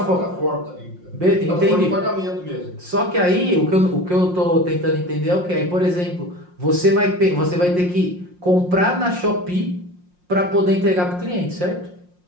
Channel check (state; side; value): late; left; 5.6 ms